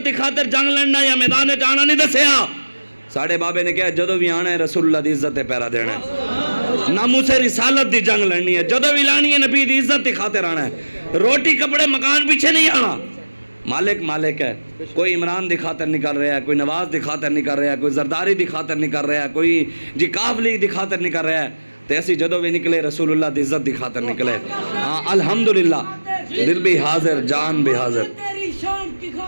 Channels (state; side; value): inverted; both; correlation -1.00